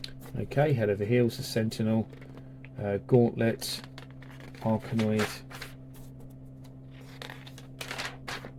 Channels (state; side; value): identical; both; correlation 1.00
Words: Okay, Head Over Heels, The Sentinel, Gauntlet, Arkanoid.